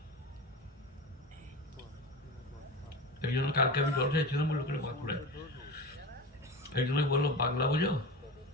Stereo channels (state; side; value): normal; both; correlation 0.27